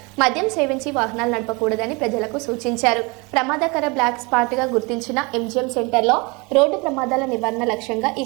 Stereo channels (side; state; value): left; quieter; 27.8 dB